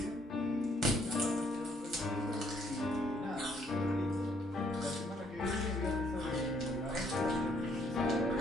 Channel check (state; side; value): normal; both; correlation 0.68